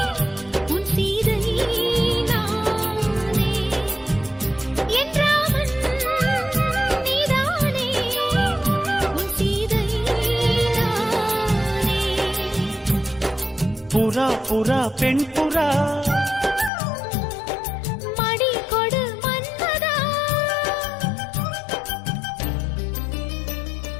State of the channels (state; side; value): drops out; right; at 16.7 s